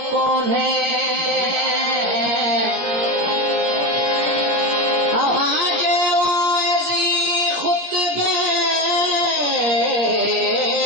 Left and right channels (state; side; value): late; left; 17 ms